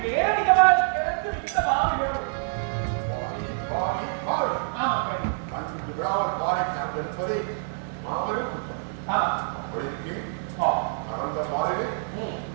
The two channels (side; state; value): left; silent; digital silence